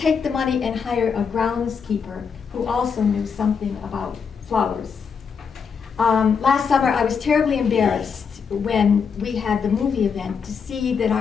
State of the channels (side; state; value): right; quieter; 6.2 dB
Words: the money and hire a groundskeeper who also knew something about flowers. Last summer, I was terribly embarrassed when we had the movie event to see that